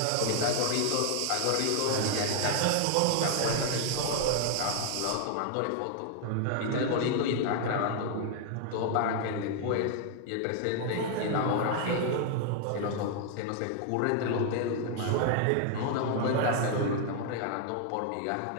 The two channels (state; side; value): different; both; correlation 0.00